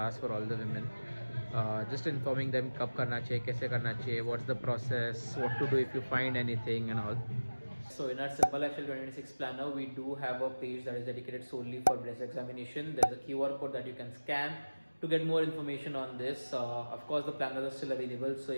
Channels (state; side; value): inverted; both; correlation -1.00